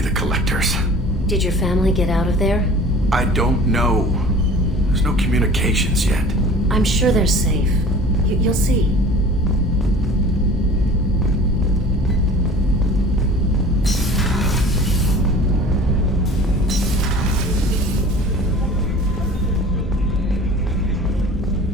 the Collectors. Did your family get out of there? I don't know. There's no communications yet. I'm sure they're safe. You'll see.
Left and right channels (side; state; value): both; normal; correlation 0.44